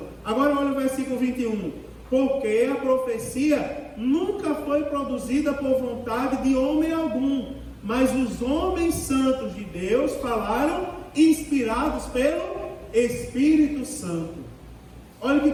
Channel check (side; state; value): both; identical; correlation 1.00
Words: Agora olha o versículo 21. Porque a profecia nunca foi produzida por vontade de homem algum, mas os homens santos de Deus falaram inspirados pelo Espírito Santo. Olha que